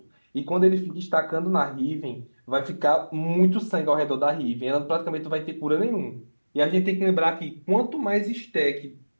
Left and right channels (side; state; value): both; inverted; correlation -1.00